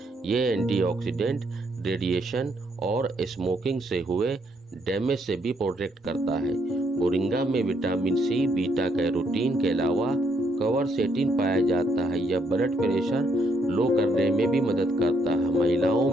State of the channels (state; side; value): normal; both; correlation 0.73